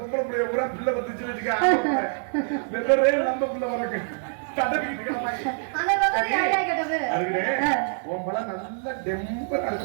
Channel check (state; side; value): silent; left; 61 dB below the other